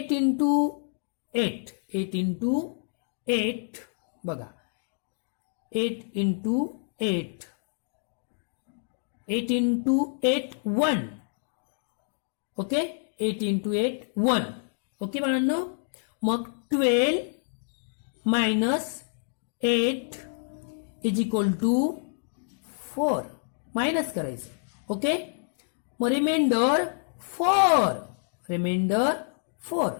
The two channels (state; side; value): silent; right; digital silence